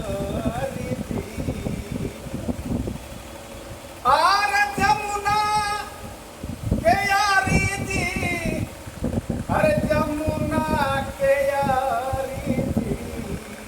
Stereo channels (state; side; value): identical; both; correlation 1.00